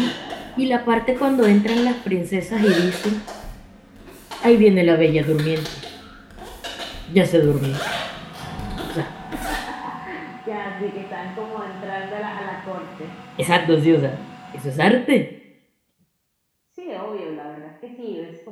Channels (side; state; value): both; identical; correlation 1.00